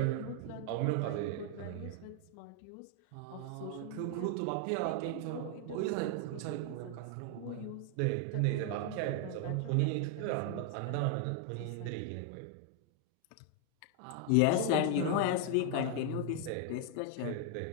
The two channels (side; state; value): both; different; correlation 0.00